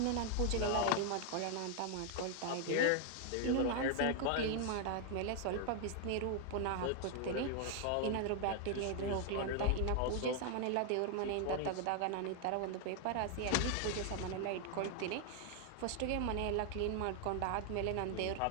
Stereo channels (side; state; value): both; different; correlation 0.00